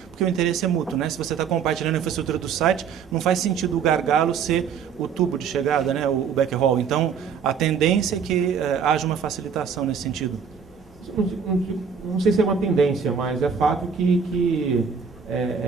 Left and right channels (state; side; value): quieter; left; 6.7 dB